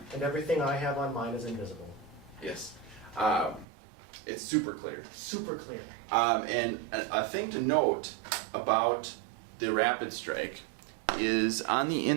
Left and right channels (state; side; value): drops out; left; at 3.7 s